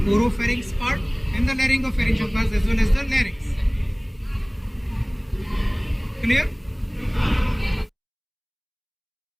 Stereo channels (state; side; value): identical; both; correlation 1.00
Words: oropharynx part and the laryngopharyngeal parts as well as the larynx. Clear?